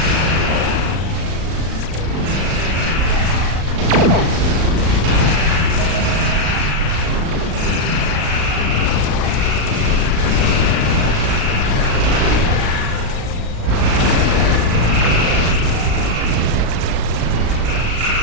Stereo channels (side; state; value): left; late; 36 ms